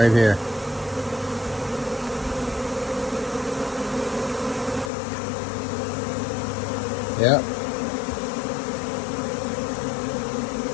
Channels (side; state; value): right; drops out; at 4.9 s